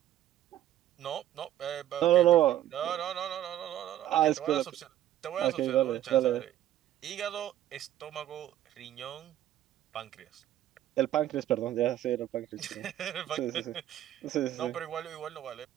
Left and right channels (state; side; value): quieter; left; 12.6 dB